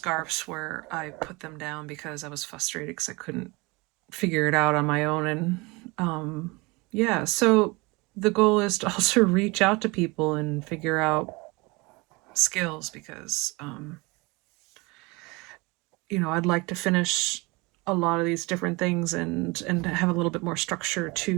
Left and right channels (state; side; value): quieter; left; 25.5 dB